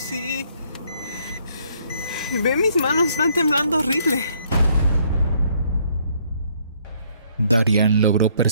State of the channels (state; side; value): inverted; both; correlation -0.67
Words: Ve, mis manos están temblando horrible. Darian logró